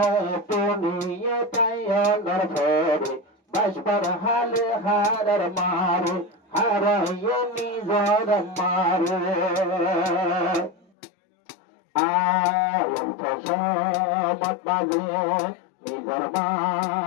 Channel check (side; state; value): right; drops out; at 10.9 s